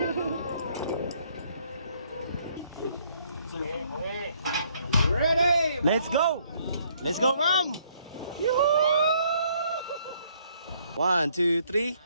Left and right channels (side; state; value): both; inverted; correlation -0.66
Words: Ready! Let's go! Let's go, Ram! Yoo-hoo! 1, 2, 3.